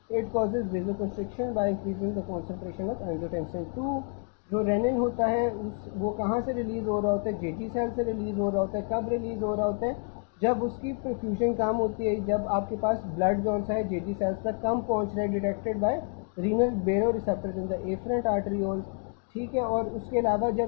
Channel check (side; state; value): right; quieter; 38.6 dB